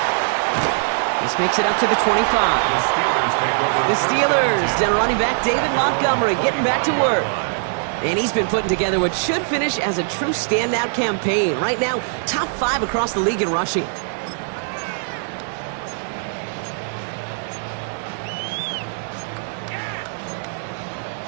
This makes it up to the 25. The Steelers take over. The Steelers, down running back David Montgomery, getting back to work. And he's been putting together what should finish as a true standout campaign. Right now, top 5 across the league in rushing.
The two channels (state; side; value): silent; left; digital silence